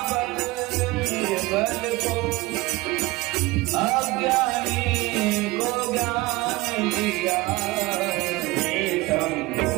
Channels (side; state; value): left; quieter; 21.1 dB